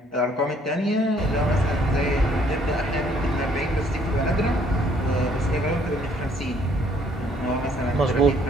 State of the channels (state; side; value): normal; both; correlation 0.63